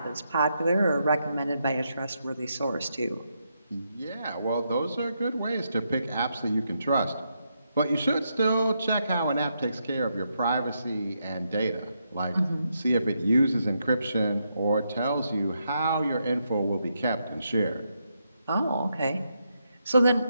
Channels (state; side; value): inverted; both; correlation -0.81